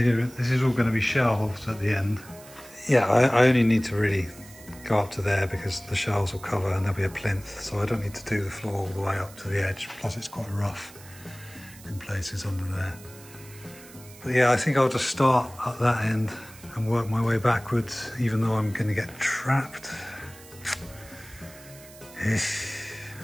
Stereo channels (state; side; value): noise; right; hiss, 20 dB below the sound